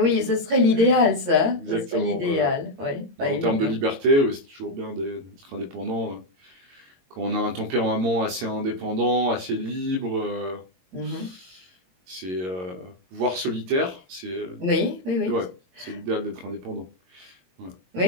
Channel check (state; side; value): late; left; 22 ms